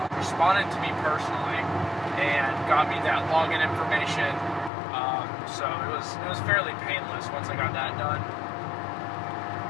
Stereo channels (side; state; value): right; drops out; at 4.7 s